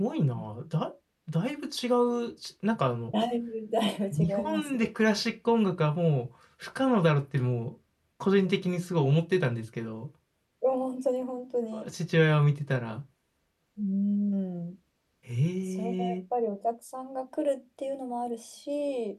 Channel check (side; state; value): both; identical; correlation 1.00